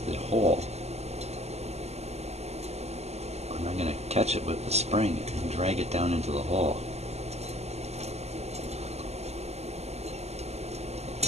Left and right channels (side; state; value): left; late; 0.31 ms